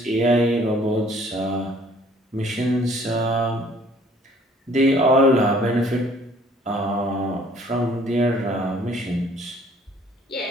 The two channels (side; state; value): both; normal; correlation 0.57